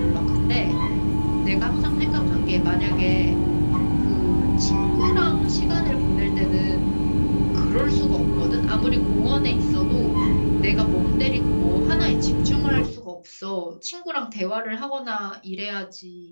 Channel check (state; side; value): inverted; both; correlation -1.00